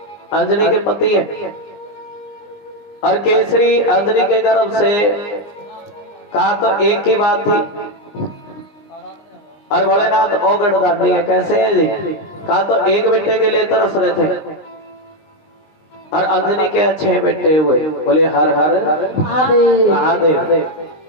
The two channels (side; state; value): right; late; 19 ms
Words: अंजनी के पति है और केसरी अंजनी के गर्भ से कहा तो एक ही बात थी। और भोलेनाथ ओ गढ़दानी है, कैसे है जी? कहा तो एक बेटे के लिए तरस रहे थे और अंजनी के 6 बेटे हुए। बोले हर हर महादेव।